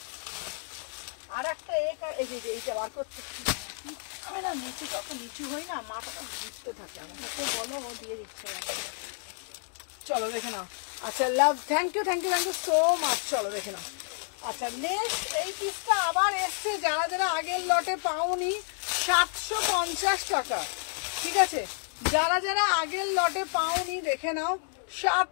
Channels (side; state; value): right; silent; 55 dB below the other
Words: আর একটা এই যে এইটা বার করতে আমি না নিচু তত নিচু হই না, মাথাটা ঘুরতে থাকে, আমাকে বলো ও দিয়ে দিচ্ছে না। চলো দেখে নাও, আচ্ছা love thank you so much. চলো দেখে নাও, আচ্ছা নেক্সট এই পিসটা আবার এসছে, যারা যারা আগের লটে পাওনি 750 টাকা, ঠিক আছে, যারা যারা আগের লটে পাওনি দেখে নাও